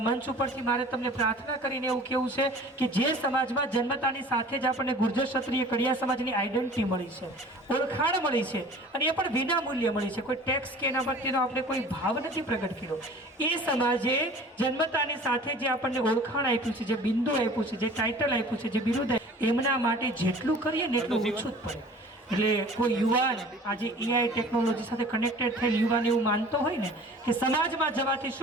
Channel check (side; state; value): both; normal; correlation 0.45